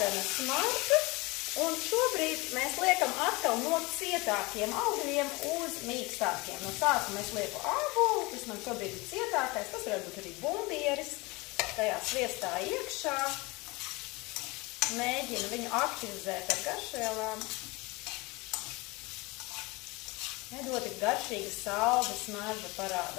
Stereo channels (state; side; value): quieter; right; 24.4 dB